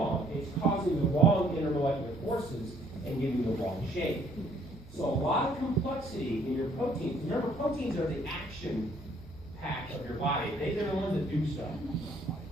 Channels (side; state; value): both; normal; correlation 0.63